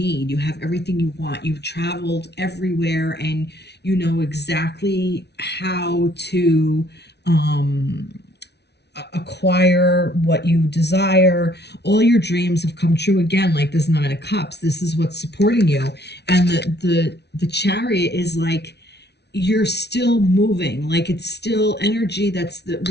you have everything you want, you've traveled everywhere, and you know exactly how to acquire what you desire. All your dreams have come true. Again, like this Nine of Cups, this is what's supporting you. And the Chariot is like you're still moving, like it's still energy. That's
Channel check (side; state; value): right; late; 0.49 ms